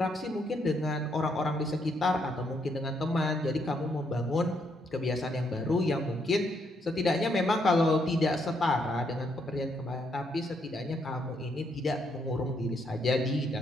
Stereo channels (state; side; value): normal; both; correlation 0.75